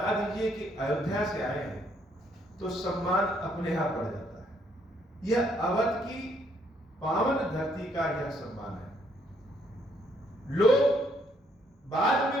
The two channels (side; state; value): both; normal; correlation 0.69